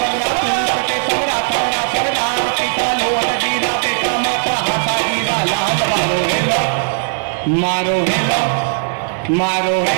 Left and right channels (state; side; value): silent; left; 68 dB below the other